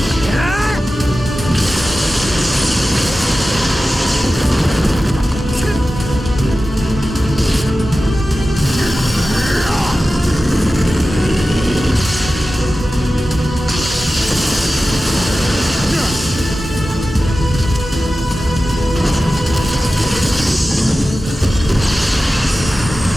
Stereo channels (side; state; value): both; normal; correlation 0.94